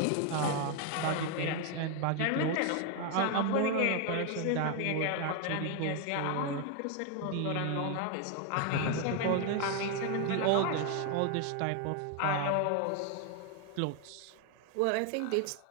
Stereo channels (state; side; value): different; both; correlation 0.01